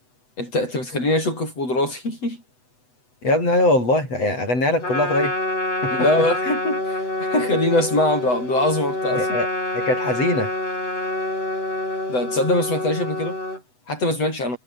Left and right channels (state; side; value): late; right; 8.0 ms